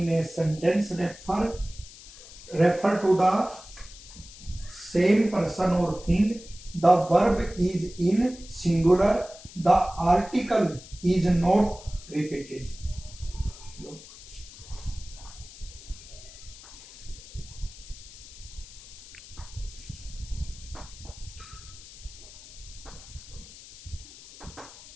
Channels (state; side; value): noise; left; hiss, 17 dB below the sound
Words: a sentence refer to the same person or thing, the verb is in singular, the article is not repeated.